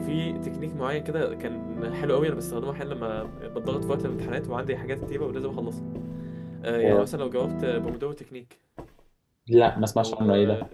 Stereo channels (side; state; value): both; identical; correlation 1.00